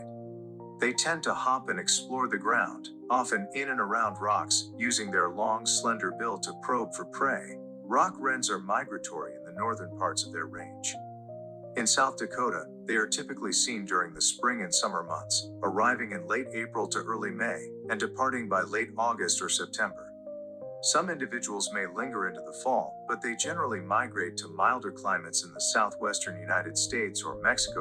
They tend to hop and explore the ground, often in and around rocks, using their long, slender bill to probe for prey. Rock wrens are migratory in the northern parts of their range. In South Dakota, they are typically seen during the spring and summer months, arriving in late April to early May, and departing by late August or September. Some individuals may linger into the fall, but they generally migrate to milder climates in the southwestern United States or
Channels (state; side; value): identical; both; correlation 1.00